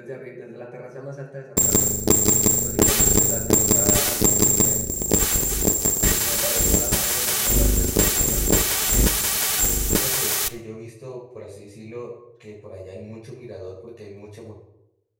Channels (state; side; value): identical; both; correlation 1.00